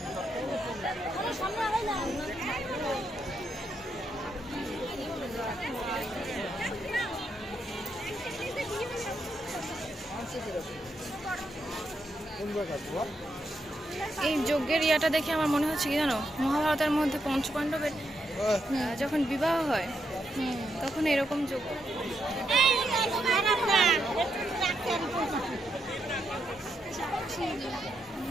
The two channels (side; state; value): both; normal; correlation 0.81